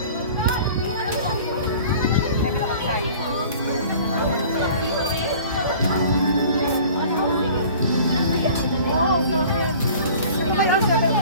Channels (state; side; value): inverted; both; correlation -0.46